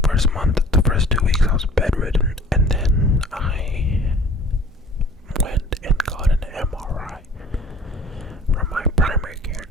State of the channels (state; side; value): normal; both; correlation 0.49